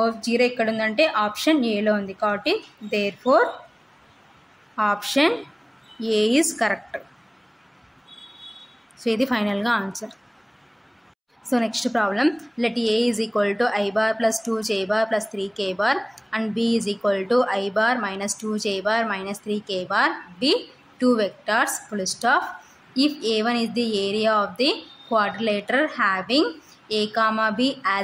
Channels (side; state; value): both; identical; correlation 1.00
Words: 0 ఎక్కడ ఉందంటే ఆప్షన్ ఏలో ఉంది కాబట్టి therefore option A is correct. So ఇది ఫైనల్గా answer. So next problem, let a is equal to i bar + 2j bar + 3k bar and b is equal to i bar - 2j bar - 3k bar be 2 vectors full stop. If a1 is the area of the quadrilateral having a comma b